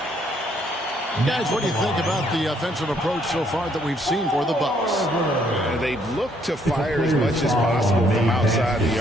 Guys, what do you think about the offensive approach so far that we've seen for the Bucks? They've looked to fire as much as possible from outside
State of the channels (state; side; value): normal; both; correlation 0.68